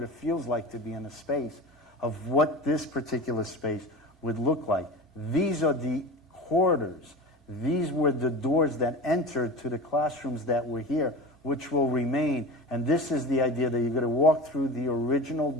it feels like to be in a space of what this particular space would look like. These are the corridors. These were the doors that entered to the classrooms that were here, which will remain. And this is the idea that you're going to walk through the original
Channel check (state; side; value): normal; both; correlation 0.31